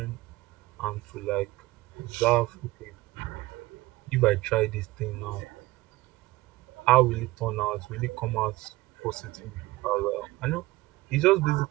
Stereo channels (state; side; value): quieter; left; 19.5 dB